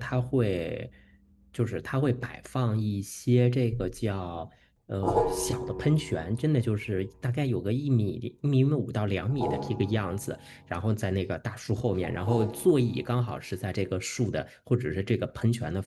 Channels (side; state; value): both; identical; correlation 1.00